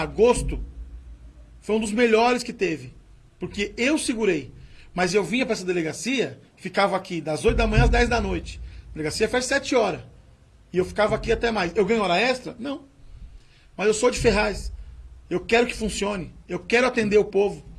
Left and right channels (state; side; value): identical; both; correlation 1.00